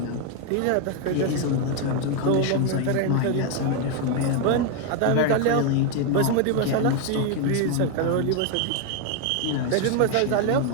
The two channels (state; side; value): different; both; correlation 0.01